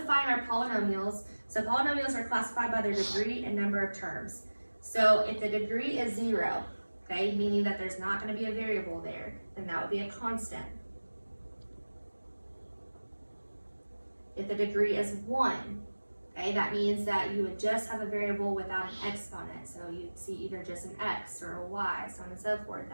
our polynomials. So polynomials are classified by their degree and number of terms. So if the degree is 0, okay, meaning that there's not going to be a variable there, then that would be a constant. If the degree is 1, okay, that means that you would just have a variable without an exponent. So you'd see either just an x or a y, so on and so forth.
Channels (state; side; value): inverted; both; correlation -1.00